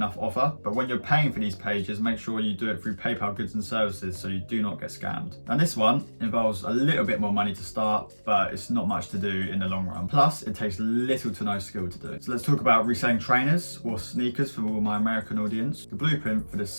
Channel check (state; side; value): inverted; both; correlation -1.00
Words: offer. But when you're paying for these pages, make sure you do it through PayPal goods and services so you do not get scammed. And this one involves a little bit more money to start, but it's not much to do in the long run. Plus, it takes little to no skill to do. So let's talk about reselling trainers or sneakers for all my American audience. The blueprint for